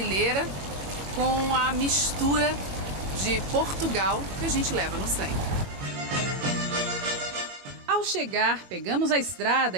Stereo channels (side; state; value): left; late; 22 ms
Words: com a mistura de Portugal que a gente leva no sangue. Ao chegar, pegamos a estrada